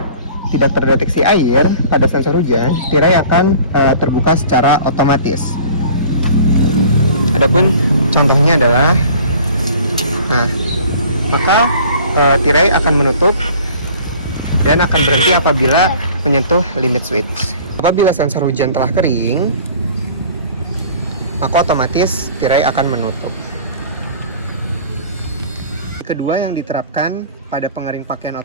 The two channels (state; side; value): inverted; both; correlation -0.47